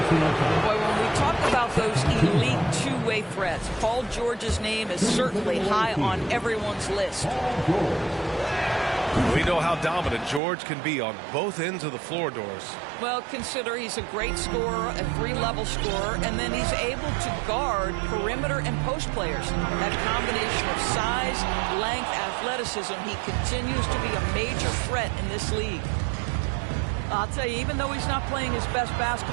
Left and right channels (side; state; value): left; drops out; at 10.4 s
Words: Boy, when we talk about those elite two-way threats, Paul George's name is certainly high on everyone's list. We know how dominant George can be on both ends of the floor, Doris. Well, consider he's a great scorer, a 3-level scorer, and then he's able to guard perimeter and post players. That combination of size, length, athleticism, he continues to be a major threat in this league. I'll tell you, even though he's not playing his best